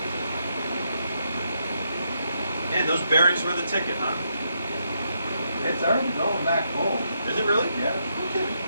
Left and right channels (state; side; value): inverted; both; correlation -0.79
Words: Man, those bearings were the ticket, huh? It's already going back cold. Is it really? Yeah. No kidding.